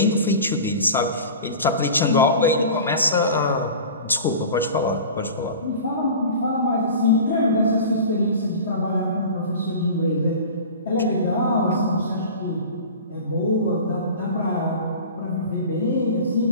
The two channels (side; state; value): both; inverted; correlation -0.36